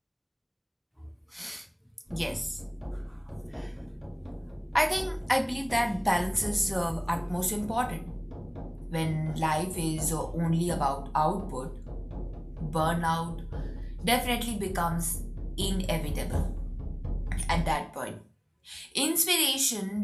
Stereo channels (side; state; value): both; identical; correlation 1.00